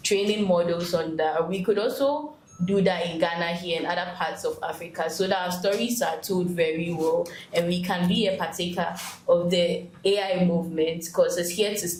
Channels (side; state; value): both; identical; correlation 1.00